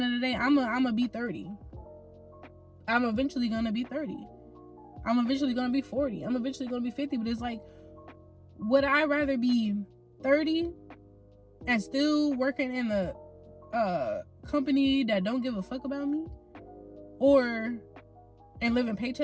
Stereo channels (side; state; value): both; identical; correlation 1.00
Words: of the day, I'm gonna be 30. I'm eventually gonna be 30. I'm eventually gonna be 40. I'm eventually gonna be 50. But it's like, would I rather be 30 and still working in a company that don't give a fuck about me, and living